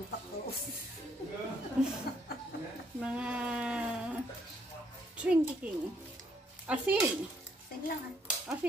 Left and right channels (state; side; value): normal; both; correlation 0.70